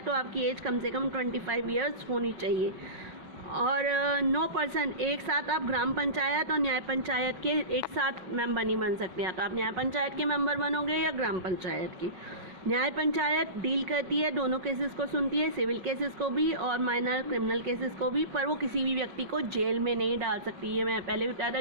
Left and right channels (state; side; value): late; left; 5.4 ms